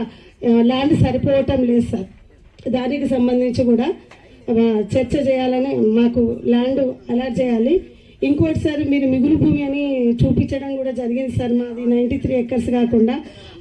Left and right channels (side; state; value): both; identical; correlation 1.00